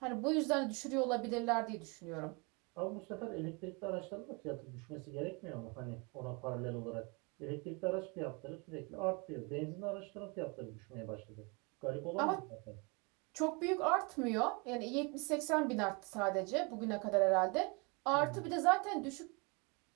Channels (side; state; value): left; quieter; 30.5 dB